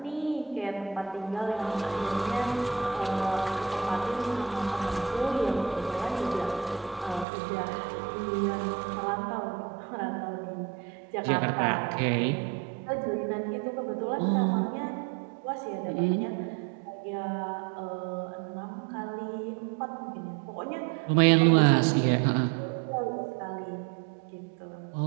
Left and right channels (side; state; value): left; drops out; at 7.2 s